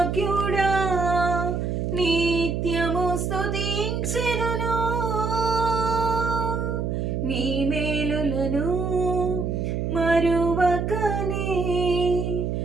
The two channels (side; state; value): right; noise; hum, 1 dB below the sound